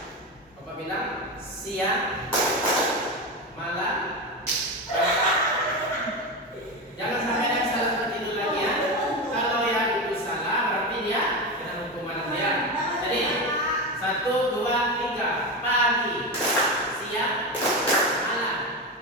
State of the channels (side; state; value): both; normal; correlation 0.18